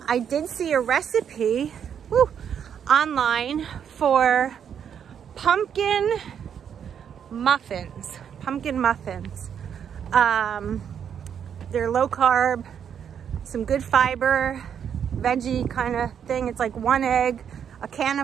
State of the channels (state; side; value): quieter; left; 8.2 dB